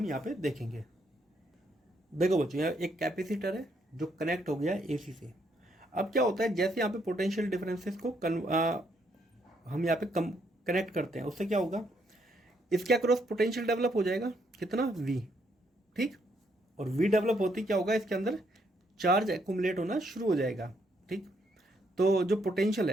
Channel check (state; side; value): normal; both; correlation 0.73